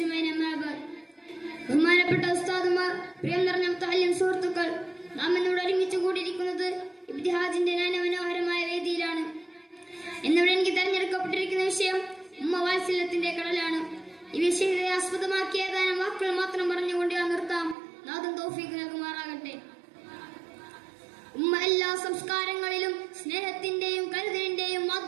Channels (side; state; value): left; drops out; at 17.8 s